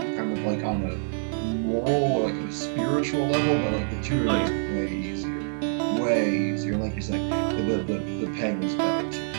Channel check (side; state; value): left; silent; digital silence